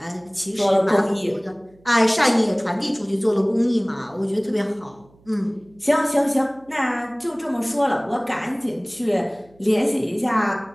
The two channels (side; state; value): right; noise; hum, 30 dB below the sound